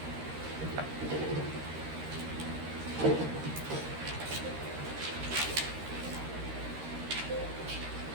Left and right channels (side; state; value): left; late; 13 ms